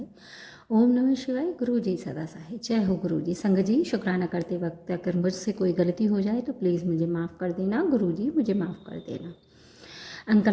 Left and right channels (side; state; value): both; identical; correlation 1.00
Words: ओम नमः शिवाय, गुरु जी सदा सहाय। जय हो गुरु जी। संगत जी, शुक्राना करते वक्त अगर मुझसे कोई गलती हो जाए तो प्लीज़ मुझे माफ़ कर देना। गुरु जी मुझे माफ़ कर देना।